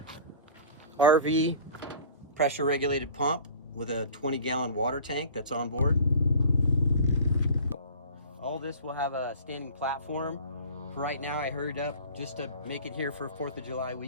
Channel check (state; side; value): inverted; both; correlation -0.42